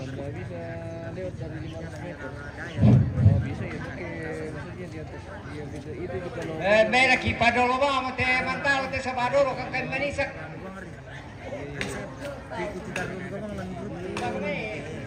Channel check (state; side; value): identical; both; correlation 1.00